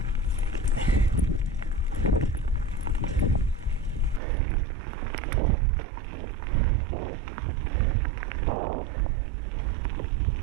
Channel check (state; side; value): drops out; left; at 4.2 s